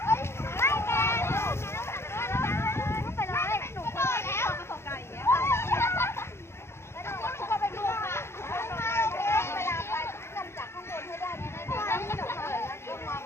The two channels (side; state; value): right; late; 0.12 ms